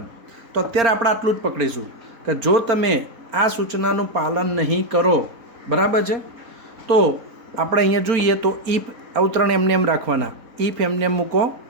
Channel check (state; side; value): late; left; 4.3 ms